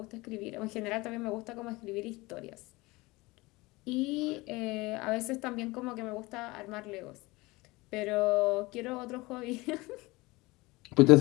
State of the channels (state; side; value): quieter; right; 22.2 dB